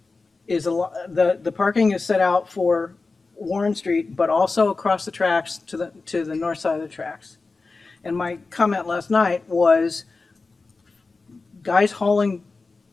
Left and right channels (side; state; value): right; quieter; 3.9 dB